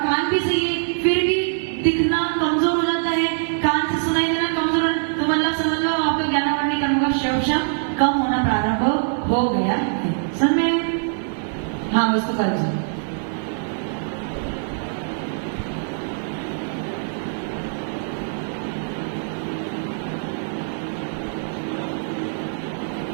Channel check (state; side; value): silent; left; digital silence